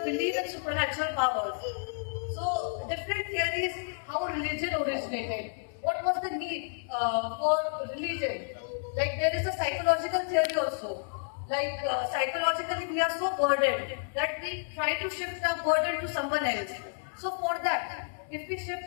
belief in supernatural powers. So different theories, how religion originated. What was the need for religion? Like there is a psychological theory also. Like psychologically we are so burdened that we try to shift our burden to someone else. So for that, if we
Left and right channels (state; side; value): silent; right; digital silence